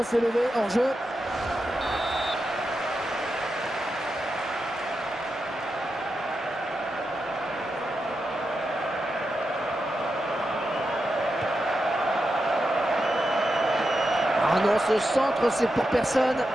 s'est levé, hors-jeu. Ah non, ce centre, c'est pour personne.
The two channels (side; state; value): both; normal; correlation 0.88